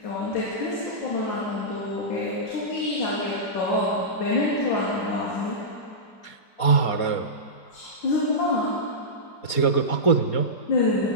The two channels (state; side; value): late; right; 4.2 ms